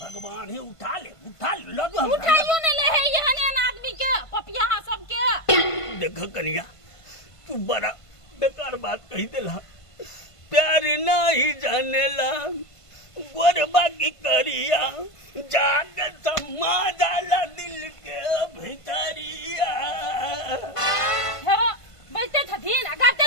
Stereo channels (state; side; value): late; right; 1.5 ms